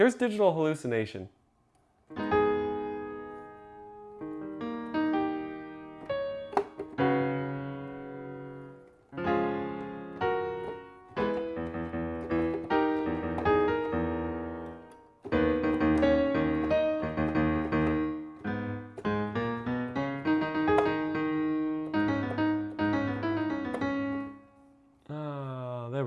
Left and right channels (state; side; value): identical; both; correlation 1.00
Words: Digital Hallucination. There